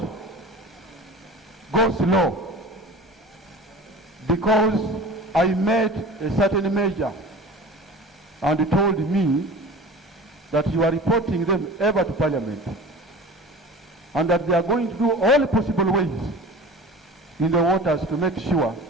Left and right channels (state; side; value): normal; both; correlation 0.38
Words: goes low because I made a certain measure, and he told me that you are reporting them ever to Parliament and that they are going to do all possible ways in the waters to make sure